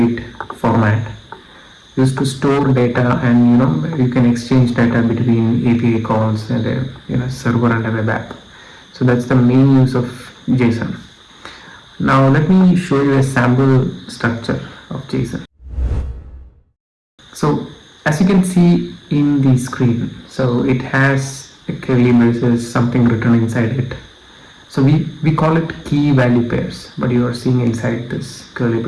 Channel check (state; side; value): identical; both; correlation 1.00